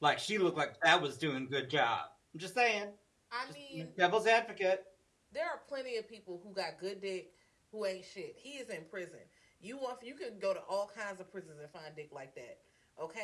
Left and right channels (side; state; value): both; identical; correlation 1.00